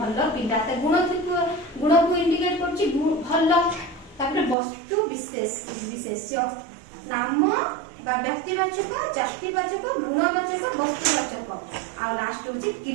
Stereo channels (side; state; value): left; drops out; at 4.5 s